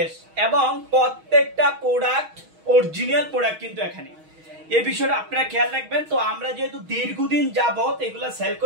এবং প্রত্যেকটা প্রোডাক্ট অরিজিনাল প্রোডাক্ট কিন্তু এখানে এই বিষয়টা আপনারা খেয়াল রাখবেন। তো আমরা যেহেতু দীর্ঘদিন যাবত এগুলো সেল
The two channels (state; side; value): late; left; 6.3 ms